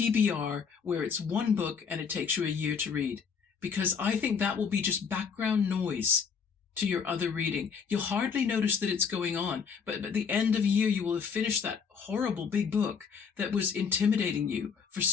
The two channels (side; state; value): right; quieter; 6.2 dB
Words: where it's 1 book and it takes you a year to read, because I think that will be just background noise to your other reading. You'll hardly notice that it's going on, but at the end of a year, you will have finished that horrible big book that was intimidating you for